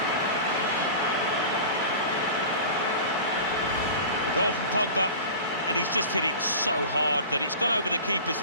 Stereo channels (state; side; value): inverted; both; correlation -0.36